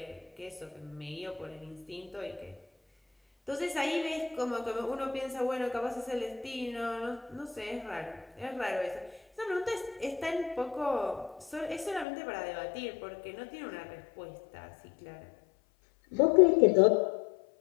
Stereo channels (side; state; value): right; drops out; at 12.1 s